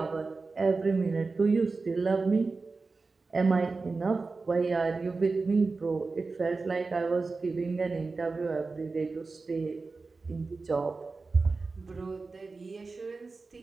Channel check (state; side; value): quieter; left; 4.0 dB